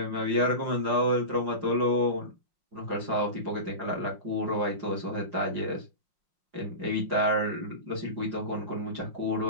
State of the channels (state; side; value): late; left; 5.6 ms